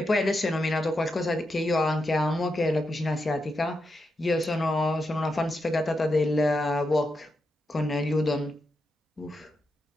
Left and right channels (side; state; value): both; normal; correlation 0.86